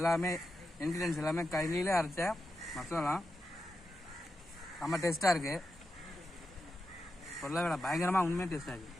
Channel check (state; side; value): normal; both; correlation 0.89